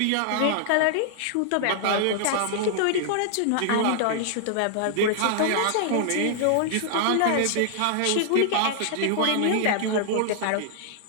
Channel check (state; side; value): different; both; correlation -0.01